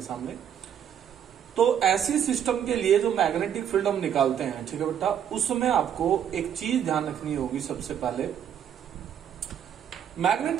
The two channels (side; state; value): left; quieter; 9.2 dB